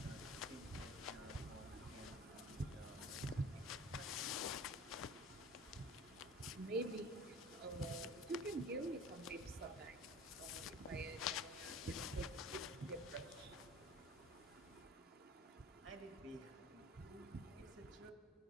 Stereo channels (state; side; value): normal; both; correlation 0.42